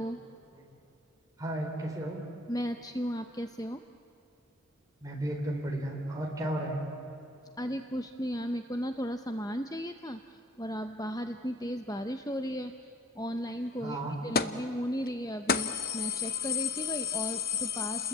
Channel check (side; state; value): both; normal; correlation 0.53